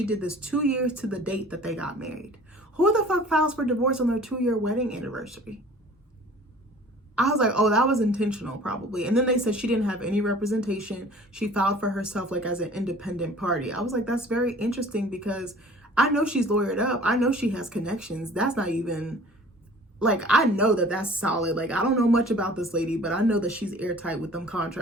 did this 2 years to the date that they got married. Who the fuck files for divorce on their 2-year wedding anniversary? I was like, oh, that was intentional probably. And then they said she didn't have any representation. She filed for herself like as an independent party. I was like, that's very interesting because I know she's lawyered up. I know she has connections. That's not even... Like, I know that that's solid. Like, I don't know much about this lady, but I know that she's airtight with them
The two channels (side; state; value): both; normal; correlation 0.48